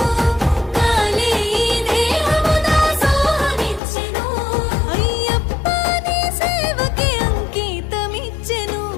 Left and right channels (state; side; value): drops out; right; at 3.8 s